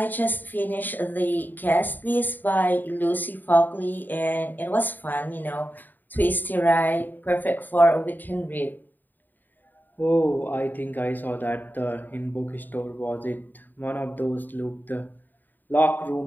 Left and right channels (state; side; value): late; right; 0.089 ms